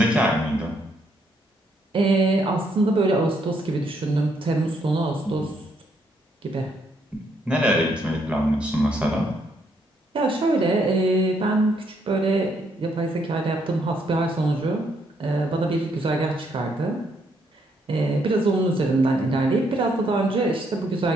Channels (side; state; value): both; normal; correlation 0.73